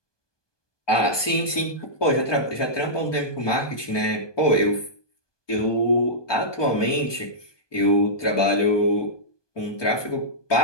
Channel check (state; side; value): late; right; 1.2 ms